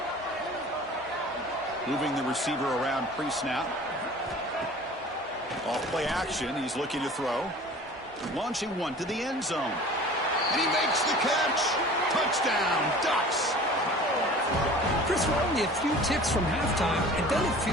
Moving the receiver around pre-snap. Off play action, he's looking to throw. Launching one to the end zone. And he makes the catch. Touchdown, Ducks. Chris, we're only a few ticks from halftime, and doesn't it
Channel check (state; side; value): normal; both; correlation 0.43